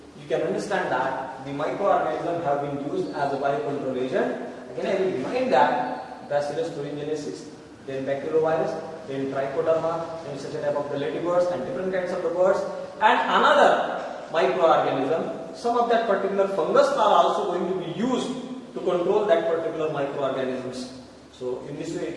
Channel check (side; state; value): both; identical; correlation 1.00